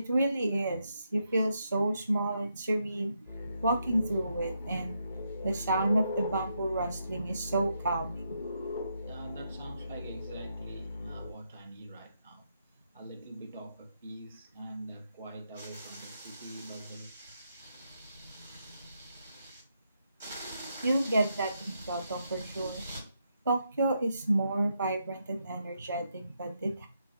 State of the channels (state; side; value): inverted; both; correlation -0.80